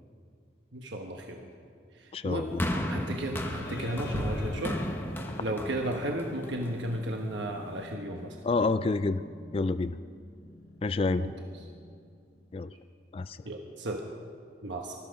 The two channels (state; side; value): normal; both; correlation 0.59